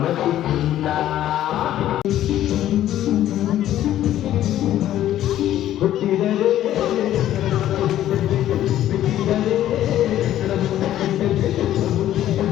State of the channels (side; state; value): right; quieter; 12.5 dB